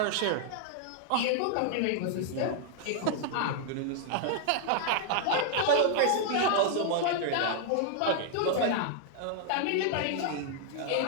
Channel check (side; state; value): both; different; correlation 0.00